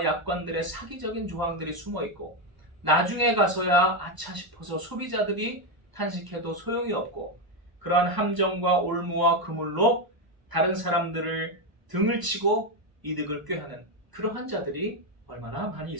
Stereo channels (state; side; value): late; left; 1.0 ms